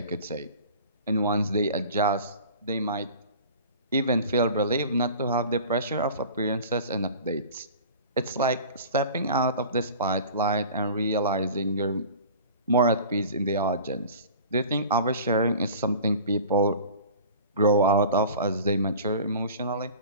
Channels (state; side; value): inverted; both; correlation -0.41